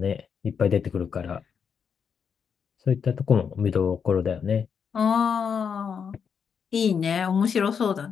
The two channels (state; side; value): quieter; right; 6.8 dB